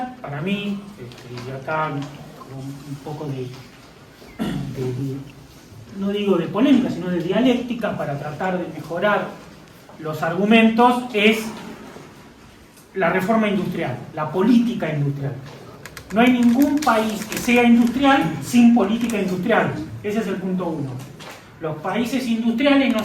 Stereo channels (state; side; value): identical; both; correlation 1.00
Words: para mí, y acá un poco no digo de polémica, sino de dialéctica para tratar de mejorar los argumentos, es la reforma industrial, la política industrial. No hay ningún país que sea industrial sin política industrial. Ese es el punto uno. Los países industriales no